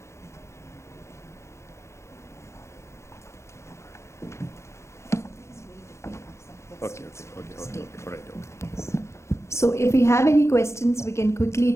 Okay. All right. Okay. So if we have any questions, we can quickly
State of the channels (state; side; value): late; right; 0.14 ms